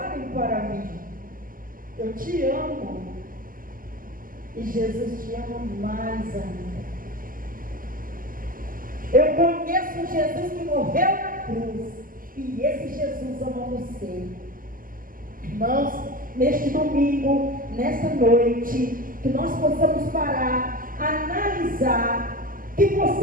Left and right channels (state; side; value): late; left; 0.41 ms